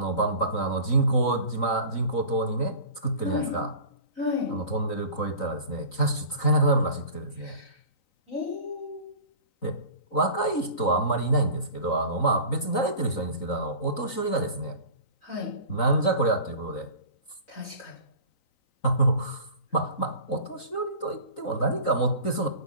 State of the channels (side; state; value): right; late; 3.9 ms